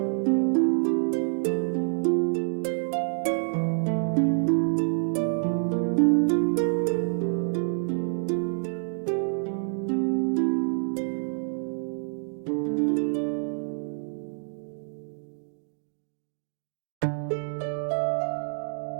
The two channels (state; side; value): silent; left; digital silence